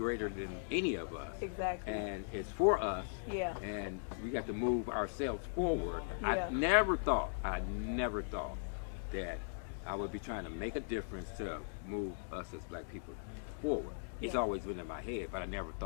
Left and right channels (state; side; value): silent; right; digital silence